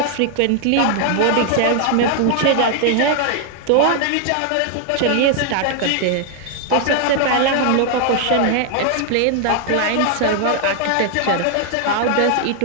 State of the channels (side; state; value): both; different; correlation 0.00